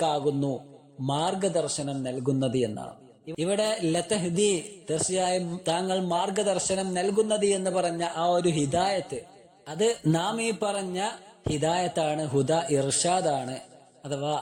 മാർഗദർശനം നൽകുന്നത് എന്നാണ്. ഇവിടെ ലതഹ്ദി തീർച്ചയായും താങ്കൾ മാർഗദർശനം നൽകുന്നത് എന്ന് പറഞ്ഞ ആ ഒരു ഹിദായത്ത് അത് നാം ഈ പറഞ്ഞ ഹിദായത്താണ്, ഹുദാ ഇർഷാദാണ്. അഥവാ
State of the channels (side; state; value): both; identical; correlation 1.00